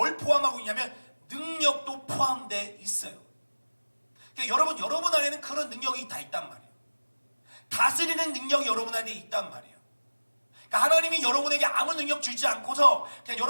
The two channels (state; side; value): inverted; both; correlation -1.00